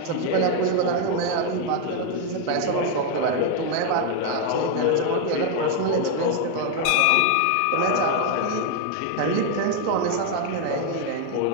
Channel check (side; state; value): both; different; correlation 0.01